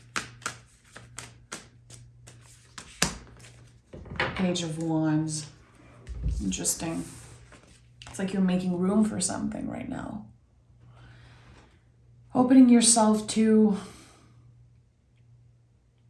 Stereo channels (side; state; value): both; identical; correlation 1.00